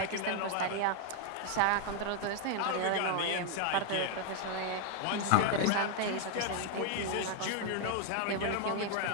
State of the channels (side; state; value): both; different; correlation 0.00